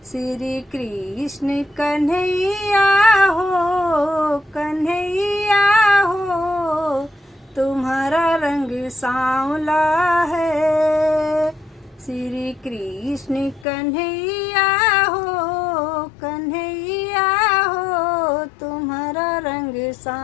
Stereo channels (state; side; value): drops out; right; at 13.7 s